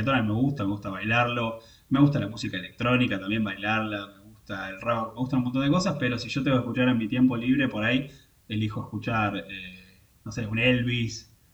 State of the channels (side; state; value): both; identical; correlation 1.00